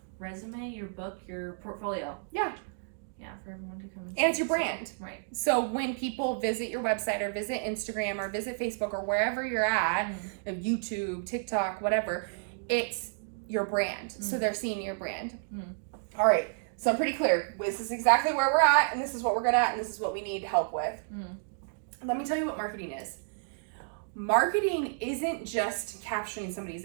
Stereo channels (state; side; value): silent; left; digital silence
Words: resume, your book, your portfolio. Yeah. Yeah, for everyone to come and it's your brand. Right. So when people visit your website or visit Instagram or visit Facebook or wherever you're at, YouTube, TikTok, whatever, it's your brand. So they're seeing your brand. All right. So I'm pretty clear. This is exactly where we're at, and this is what we're good at, and this is what we need help with. Let me tell you what marketing is. Marketing isn't just capturing somebody's